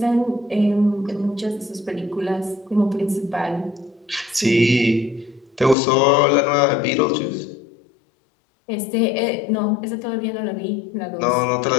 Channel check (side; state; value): right; drops out; at 5.8 s